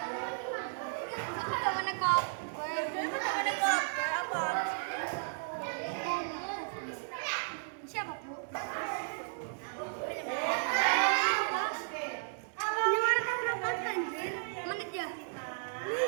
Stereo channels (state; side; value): silent; left; 55 dB below the other